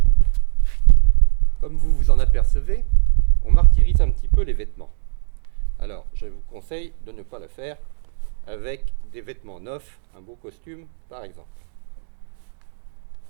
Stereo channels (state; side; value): silent; left; digital silence